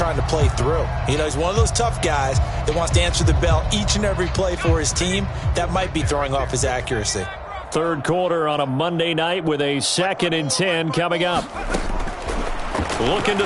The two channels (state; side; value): identical; both; correlation 1.00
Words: to play through. You know, he's one of those tough guys that wants to answer the bell each and every play for his team. That might be throwing off his accuracy. Third quarter on a Monday night with a 2nd and 10 coming up. Looking